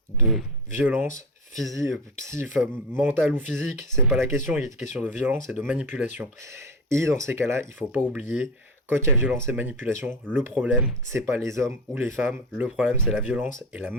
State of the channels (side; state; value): both; normal; correlation 0.24